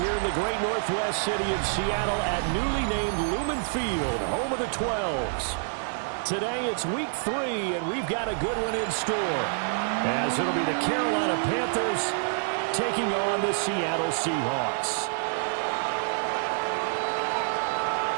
in the great northwest city of Seattle at newly named Lumen Field, home of the 12s. Today it's week 3, and we've got a good one in store, as it'll be the Carolina Panthers taking on the Seattle Seahawks.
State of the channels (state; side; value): silent; left; 55 dB below the other